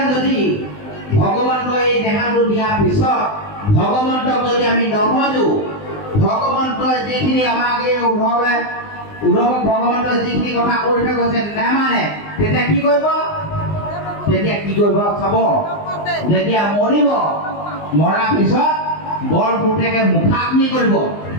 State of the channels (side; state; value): right; late; 19 ms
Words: যদি ভগৱন্তই এই দেহাটো দিয়াৰ পিছত ভগৱন্তক যদি আমি নভজো, ভগৱন্তই যিখিনি আমাক এই উদ্ধৱক ভগৱন্তই যিখিনি কথা কৈ থৈ গৈছে নেমানে, তেতিয়া কি কৰিব চাব। যেতিয়া মৰিব, মৰাৰ পিছত বৰ পুতেকে মুখাগ্নি কৰিব।